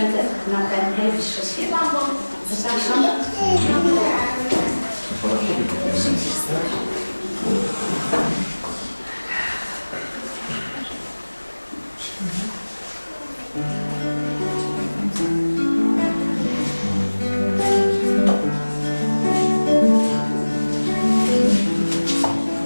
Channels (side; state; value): both; inverted; correlation -1.00